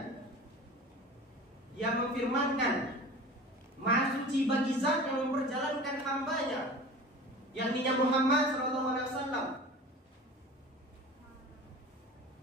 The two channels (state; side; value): normal; both; correlation 0.37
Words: Dia memfirmankan maha suci bagi zat yang memperjalankan hambanya, yakni Muhammad SAW,